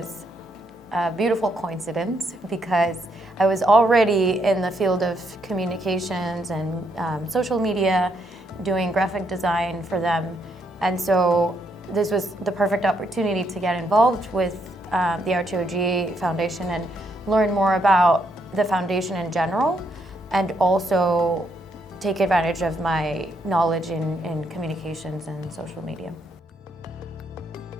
a beautiful coincidence because I was already in the field of communications and social media, doing graphic design for them. And so this was the perfect opportunity to get involved with the RTOG Foundation and learn more about the foundation in general, and also take advantage of my knowledge in communications and social media.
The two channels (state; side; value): normal; both; correlation 0.75